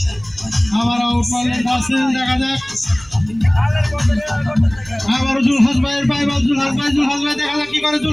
আবার আউট মারলেন রাসেল, দেখা যাক। আবার জুলহাস ভাইয়ের পাই বল, জুলহাস ভাই দেখা যাক কি করে।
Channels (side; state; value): right; noise; hum, 25 dB below the sound